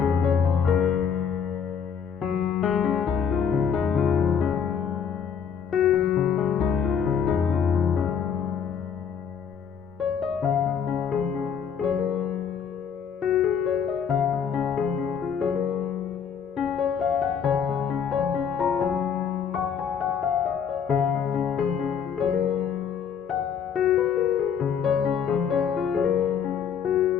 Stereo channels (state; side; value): quieter; right; 7.3 dB